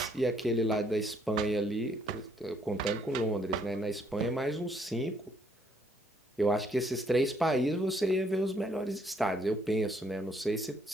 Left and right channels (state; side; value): normal; both; correlation 0.68